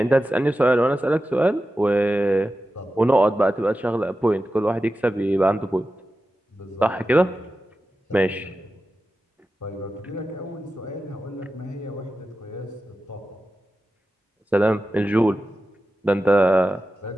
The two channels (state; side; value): normal; both; correlation 0.92